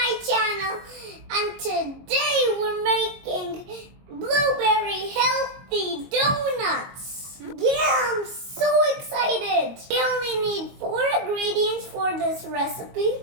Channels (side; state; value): left; late; 22 ms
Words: channel. And today we're making blueberry healthy donuts. Yeah, I'm so excited. We only need 4 ingredients for this recipe.